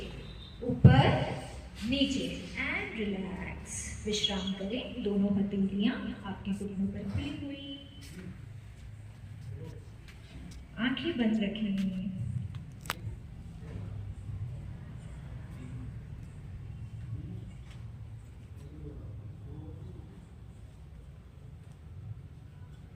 ऊपर नीचे एंड रिलैक्स। विश्राम करें। दोनों हथेलियां आपके घुटनों पर खुली हुई, आंखें बंद रखें।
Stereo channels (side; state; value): both; identical; correlation 1.00